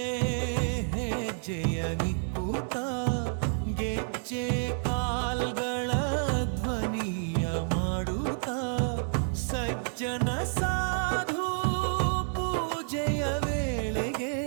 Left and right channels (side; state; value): left; silent; digital silence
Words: ಹೆಜ್ಜೆಯ ನಿಕ್ಕುತ್ತ ಗೆಜ್ಜೆ ಕಾಲ್ಗಳ ಧ್ವನಿಯ ಮಾಡುತ್ತ ಸಜ್ಜನ ಸಾಧು ಪೂಜೆಯ ವೇಳೆಗೆ